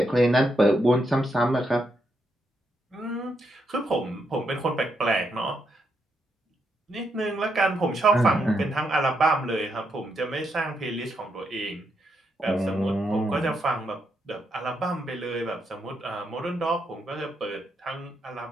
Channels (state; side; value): normal; both; correlation 0.80